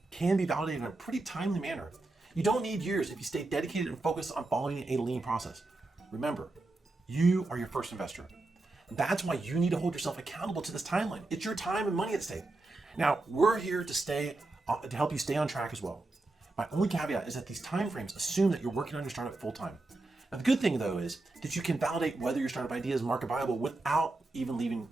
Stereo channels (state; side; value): quieter; left; 3.0 dB